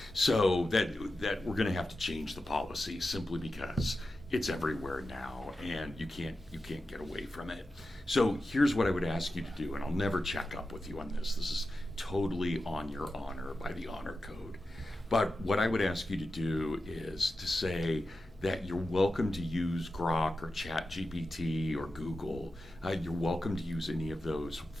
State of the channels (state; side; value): normal; both; correlation 0.92